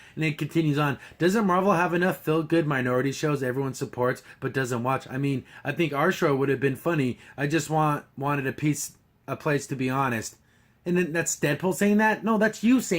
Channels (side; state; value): both; identical; correlation 1.00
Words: and it continues on. Doesn't Marvel have enough feel-good minority shows everyone supports but doesn't watch? I mean, I think our show would have been funny. I just wanted a place to be honest. And then that's Deadpool saying that? No, that's you